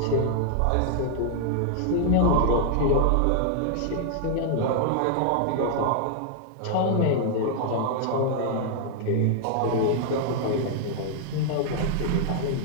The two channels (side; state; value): both; different; correlation 0.00